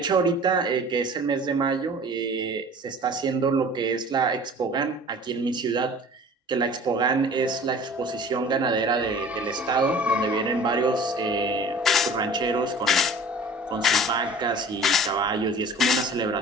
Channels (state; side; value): normal; both; correlation 0.44